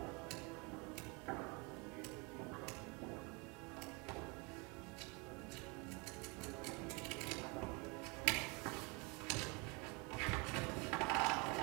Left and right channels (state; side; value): quieter; left; 29.3 dB